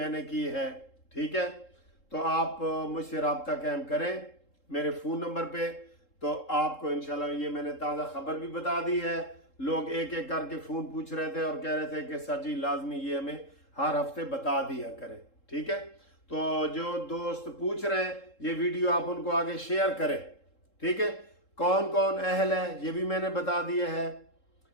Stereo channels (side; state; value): right; late; 3.7 ms